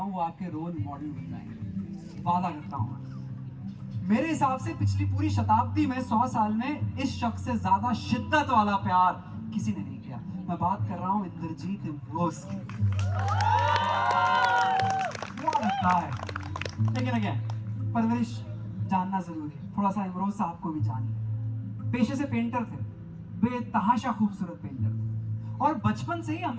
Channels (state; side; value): identical; both; correlation 1.00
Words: हूँ वो आपके रोल मॉडल बन जाएंगे, वादा करता हूँ। मेरे हिसाब से पिछली पूरी शताब्दी में 100 साल में इस शख्स से ज्यादा शिद्दत वाला प्यार किसी ने नहीं किया। मैं बात कर रहा हूँ इंद्रजीत इम्रोज की। लगता है लेकिन अगेन परवरिश जानना जरूरी है, थोड़ा सा इमरोज साहब को भी जानिए। पेशे से पेंटर थे, बेतहाशा खूबसूरत पेंटर थे, और बचपन से ही